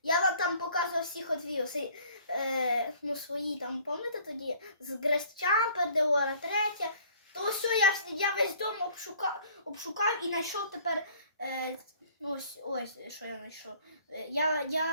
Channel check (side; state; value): both; inverted; correlation -0.54